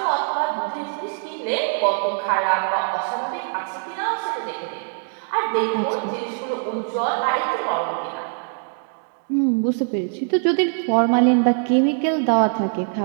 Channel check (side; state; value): left; silent; 64 dB below the other